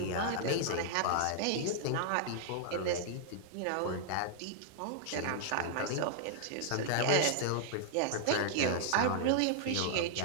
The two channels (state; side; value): different; both; correlation -0.01